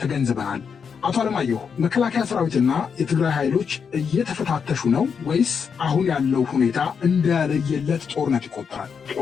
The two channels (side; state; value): right; quieter; 6.4 dB